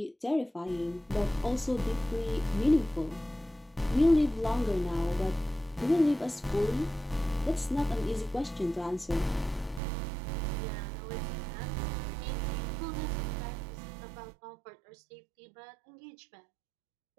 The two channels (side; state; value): left; drops out; at 9.8 s